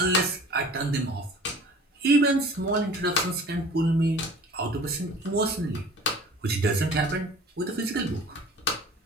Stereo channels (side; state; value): both; normal; correlation 0.45